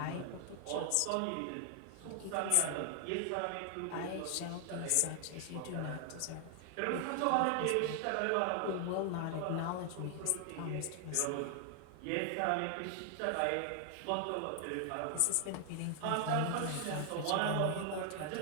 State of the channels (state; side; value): different; both; correlation 0.00